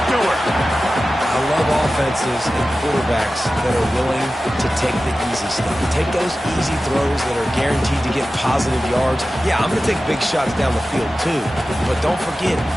Stewart. I love offenses and quarterbacks that are willing to take the easy stuff. Take those easy throws that are guaranteed to get positive yards. Yeah, I'm going to take big shots down the field too. But don't forget,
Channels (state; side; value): normal; both; correlation 0.95